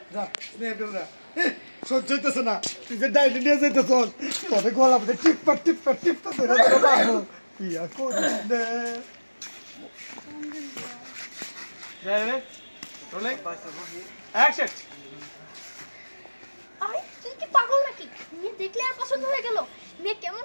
সহ্য হইতেছে না, তুই যে ডাইনি নিয়ে যাইতেছ তবে গলা টিপা টিপা টিপা ধরে ধরে পাবো ইয়া করিস না। আরে তুই কি পাগল নাকি? মেয়ে দেখলে আর পছন্দ হয়ে গেল? মেয়ে কেমন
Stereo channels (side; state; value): both; inverted; correlation -1.00